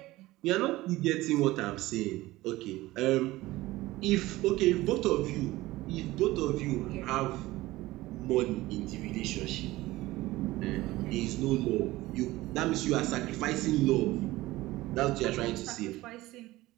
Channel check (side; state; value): left; quieter; 18.2 dB